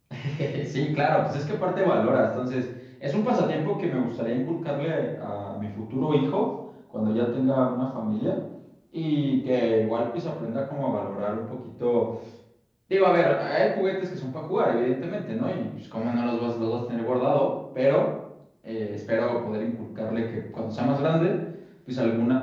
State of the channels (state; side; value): identical; both; correlation 1.00